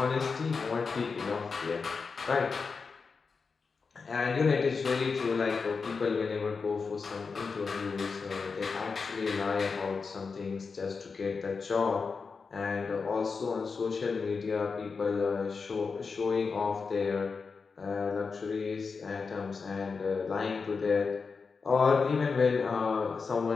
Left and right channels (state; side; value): quieter; right; 4.9 dB